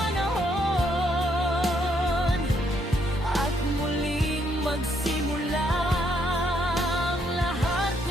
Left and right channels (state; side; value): normal; both; correlation 0.73